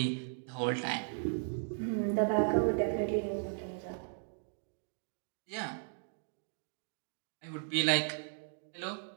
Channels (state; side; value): silent; left; digital silence